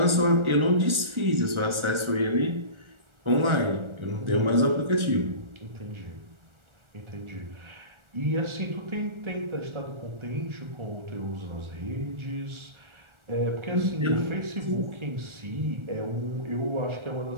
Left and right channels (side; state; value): left; late; 1.4 ms